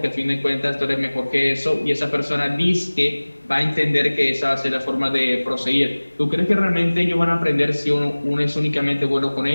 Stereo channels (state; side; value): inverted; both; correlation -1.00